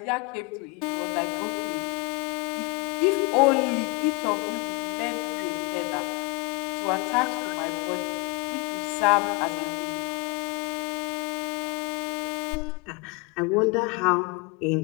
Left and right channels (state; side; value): quieter; right; 27.8 dB